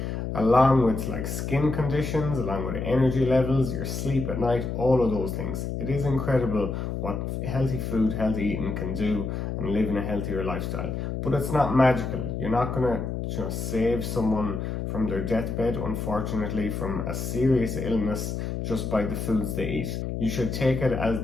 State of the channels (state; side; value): noise; left; hum, 3 dB below the sound